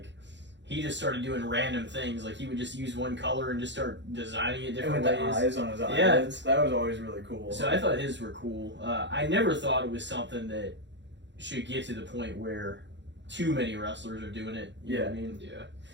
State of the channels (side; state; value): left; late; 0.52 ms